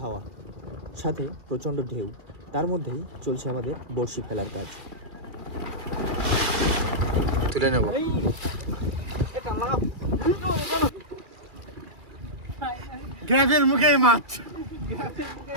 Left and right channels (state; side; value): late; left; 2.4 ms